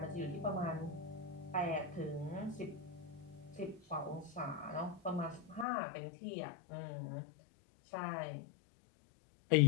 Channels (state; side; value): drops out; right; at 5.7 s